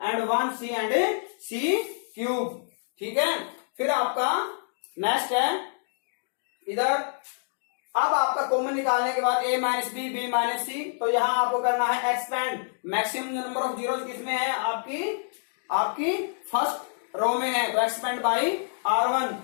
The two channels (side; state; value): right; silent; digital silence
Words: and 1 c and c cube. ठीक है, फिर आपका नेक्स्ट है इधर, अब आपका कॉमन निकालने के बाद a minus B B minus C, तो यहां आपको करना है expand. Maximum number of zeros किसमें है, आपकी फर्स्ट रो में है, तो एक्सपेंड बाई